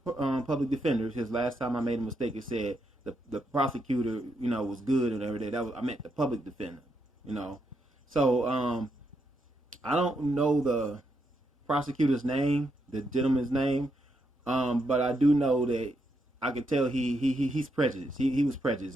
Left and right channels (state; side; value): normal; both; correlation 0.80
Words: public defender, his last time I made a mistake, it said the prosecutor, was good and everything. I meant the public defender, So, I don't know the prosecutor's name, the gentleman's name, but I do know that I could tell he's prejudiced. He was prejudiced.